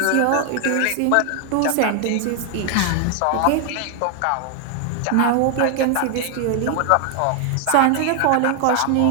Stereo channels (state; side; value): different; both; correlation 0.00